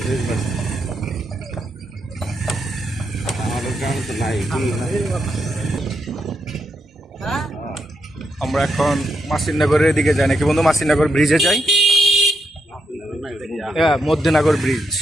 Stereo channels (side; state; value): both; normal; correlation 0.81